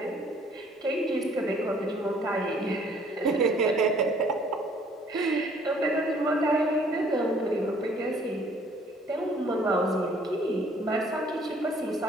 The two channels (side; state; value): both; normal; correlation 0.59